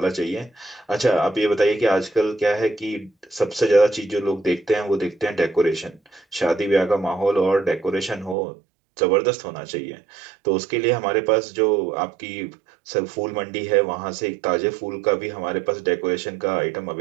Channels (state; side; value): drops out; left; at 8.3 s